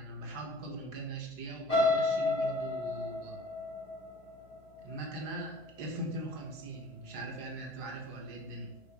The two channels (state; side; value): noise; left; hum, 26 dB below the sound